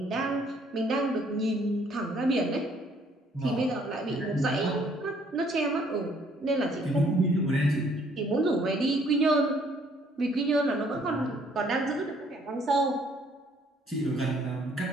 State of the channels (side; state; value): both; normal; correlation 0.63